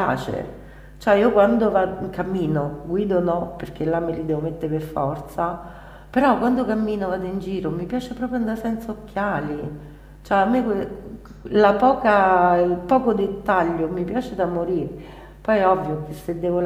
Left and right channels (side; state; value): both; identical; correlation 1.00